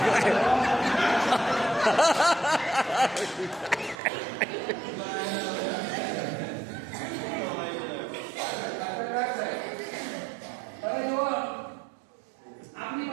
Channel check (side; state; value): left; drops out; at 4.0 s